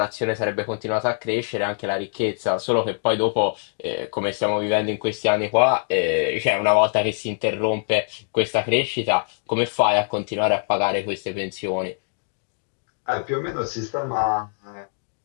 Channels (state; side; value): silent; right; digital silence